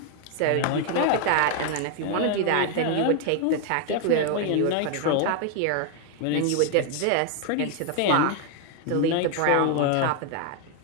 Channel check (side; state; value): both; different; correlation 0.00